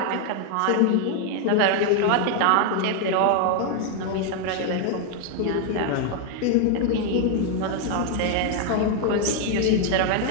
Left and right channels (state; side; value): different; both; correlation 0.00